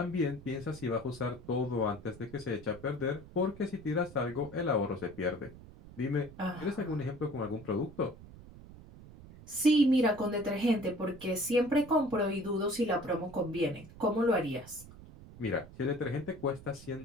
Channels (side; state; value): right; noise; rumble, 18 dB below the sound